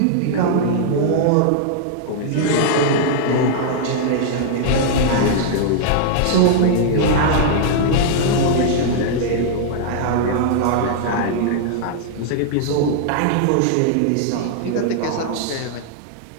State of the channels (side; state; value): both; different; correlation -0.01